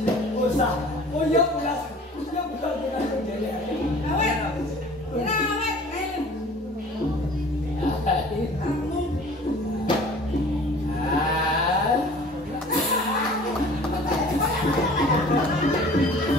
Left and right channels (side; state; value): both; normal; correlation 0.46